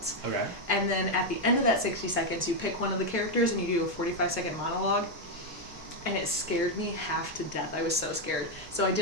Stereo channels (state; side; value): normal; both; correlation 0.02